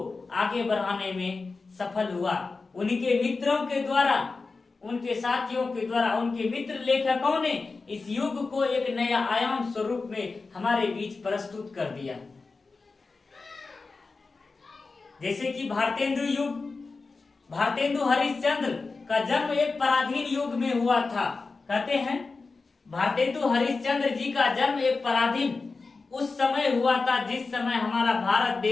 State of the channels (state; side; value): quieter; right; 4.1 dB